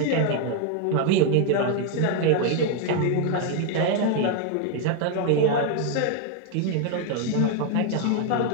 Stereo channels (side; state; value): both; different; correlation 0.01